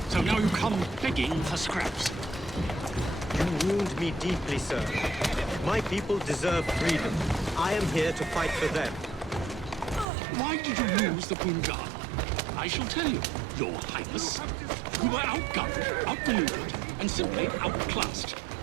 So now you come begging for scraps. You wound me deeply, sir. My people deserve freedom. I am here to fight for them. Why did you lose the Punjab? I shall tell you, Your Highness. You were outgunned, outmaneuvered, and simply outclassed.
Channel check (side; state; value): left; drops out; at 10.1 s